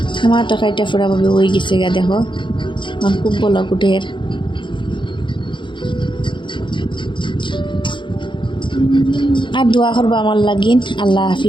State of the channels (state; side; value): late; right; 0.23 ms